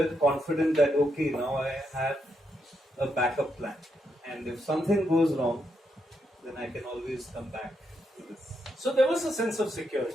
confident that okay, now I have a backup plan, and if something goes wrong, then I can always come back to this. So there was a sense of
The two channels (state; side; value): normal; both; correlation 0.80